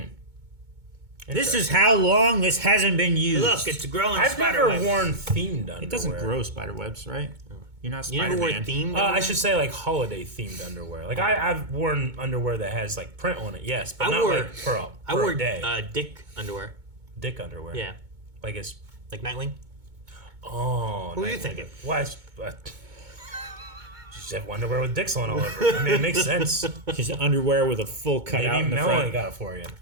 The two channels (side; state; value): left; late; 2.2 ms